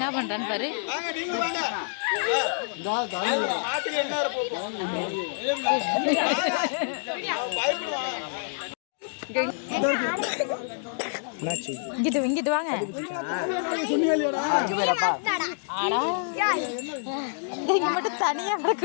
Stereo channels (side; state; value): right; silent; digital silence